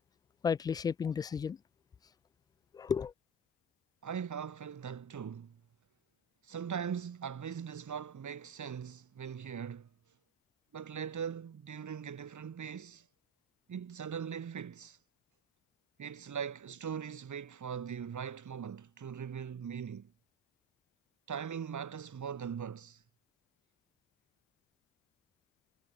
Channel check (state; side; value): normal; both; correlation 0.25